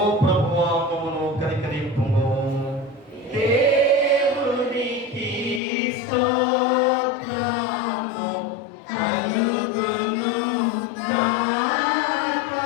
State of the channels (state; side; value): drops out; right; at 5.6 s